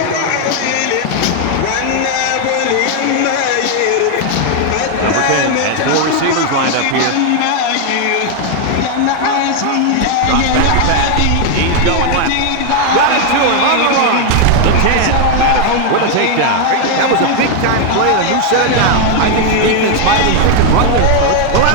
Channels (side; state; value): both; different; correlation 0.00